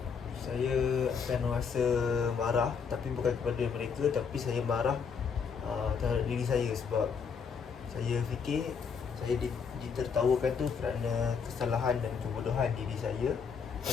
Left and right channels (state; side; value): quieter; right; 6.0 dB